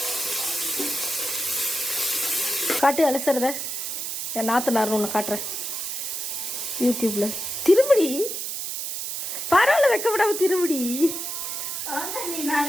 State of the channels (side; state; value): right; noise; hiss, 4 dB below the sound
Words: காட்டு அலசுறத என் நாத்தனார் ஒன்று காட்டுறேன் யூடியூப்ல. திரும்படி பரவாயில்ல, வைக்க விடாம திரும்படி.